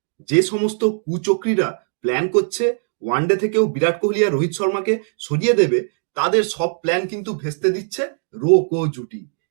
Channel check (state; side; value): silent; left; 66 dB below the other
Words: যে সমস্ত কুচক্রীরা প্ল্যান করছে ওয়ানডে থেকেও বিরাট কোহলি আর রোহিত শর্মাকে সরিয়ে দেবে, তাদের সব প্ল্যান কিন্তু ভেস্তে দিচ্ছে রো জুটি।